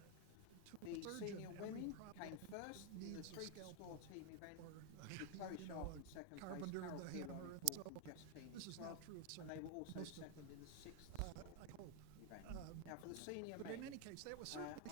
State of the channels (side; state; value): both; different; correlation 0.01